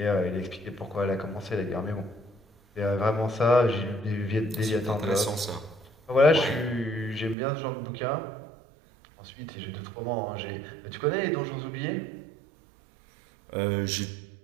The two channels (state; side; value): drops out; left; at 7.4 s